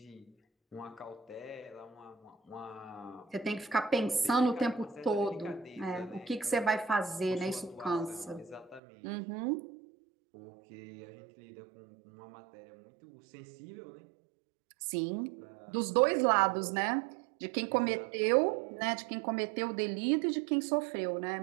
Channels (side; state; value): left; drops out; at 8.8 s